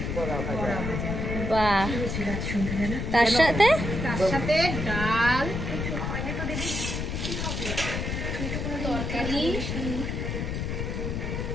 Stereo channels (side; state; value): left; noise; rumble, 3 dB below the sound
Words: বড়া ভাজা। বাহ, তার সাথে ডাল, তরকারি,